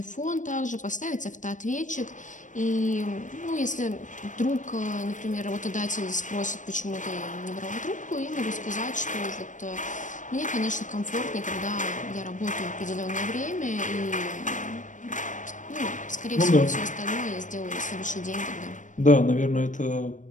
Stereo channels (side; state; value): right; late; 0.37 ms